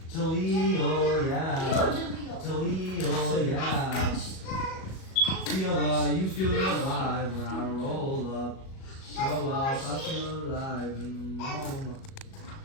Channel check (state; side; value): late; right; 37 ms